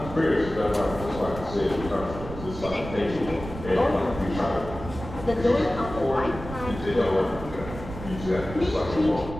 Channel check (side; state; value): right; noise; rumble, 11 dB below the sound